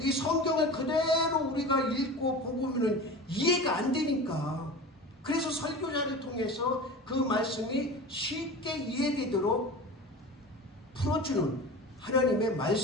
이 성경을 그대로 우리가 읽고 보고는 이해가 안 되니까. 그래서 설교자를 통해서 그 말씀이 쉽게 이해되도록 풀어주는 하나님의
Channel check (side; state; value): both; normal; correlation 0.33